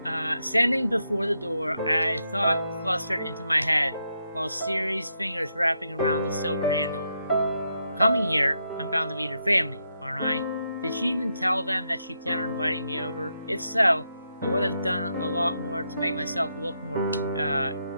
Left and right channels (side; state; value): both; inverted; correlation -0.81